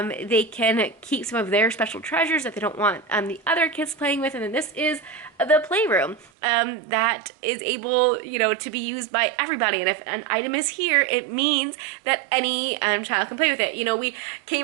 can keep some of their special treasures that they don't want the other kids playing with. And then this is the playroom that is able, to be used by everybody. And if an item is here, it means that any child can play with it. We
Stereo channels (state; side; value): drops out; left; at 6.3 s